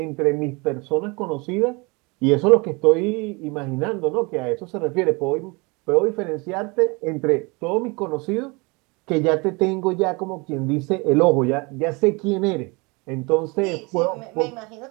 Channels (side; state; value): left; quieter; 27.8 dB